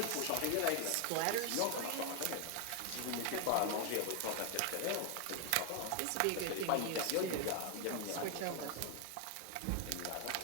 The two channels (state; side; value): different; both; correlation 0.01